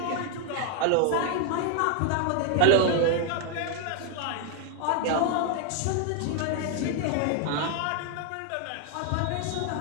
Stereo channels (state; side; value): different; both; correlation 0.00